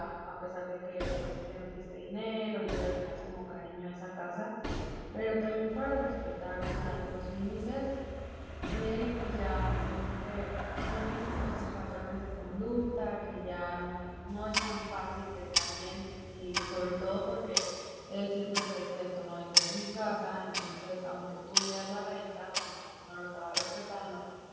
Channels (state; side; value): identical; both; correlation 1.00